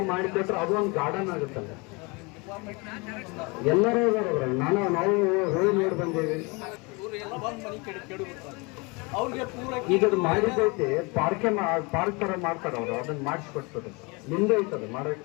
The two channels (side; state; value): right; quieter; 28.1 dB